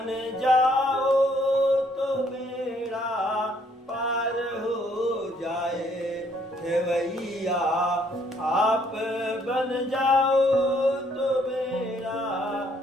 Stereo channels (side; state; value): both; normal; correlation 0.66